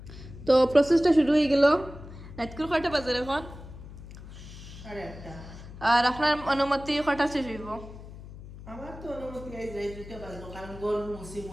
তো প্রসেসটা শুরু হয়ে গেল। রাতকুর কয়টা বাজে এখন? 8:30। আর আপনার অনুমতি কয়টা শেষ হইব? আমার তো অনুমতি গাইজ রাই দুইটা বাজবো, কারণ গোল মুসি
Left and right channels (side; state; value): left; noise; hum, 15 dB below the sound